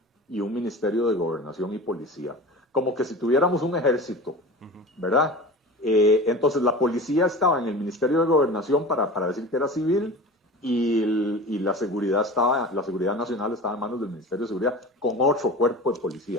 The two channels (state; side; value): normal; both; correlation 0.35